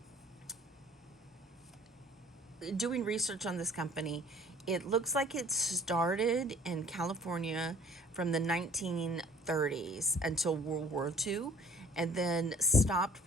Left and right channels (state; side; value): normal; both; correlation 0.52